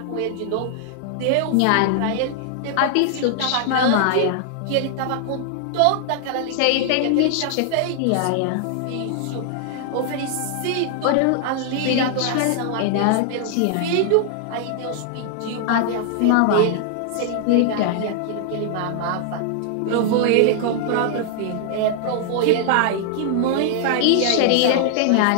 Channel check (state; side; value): different; both; correlation 0.00